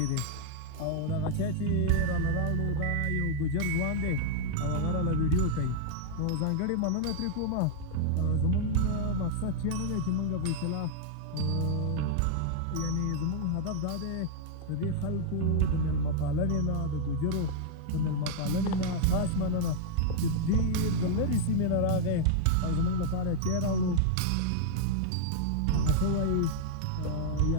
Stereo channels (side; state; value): both; different; correlation -0.01